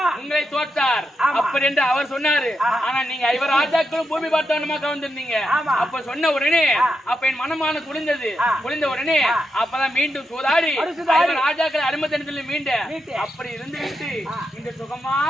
உங்களை தோற்றார் அப்படி என்று அவர் சொன்னாரு. ஆனா நீங்க ஐவர் ராஜாக்களும் பூமி பார்த்தவனமா கவர்ந்திருந்தீங்க. அப்ப சொன்ன உடனே அப்ப என் மனமான குளிர்ந்தது. குளிர்ந்த உடனே அப்பதான் மீண்டும் சூதாடி ஐவர் ராஜாக்களை அனுமதி மீண்ட. அப்படி இருந்து விட்டு இந்த சுகமா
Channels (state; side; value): normal; both; correlation 0.85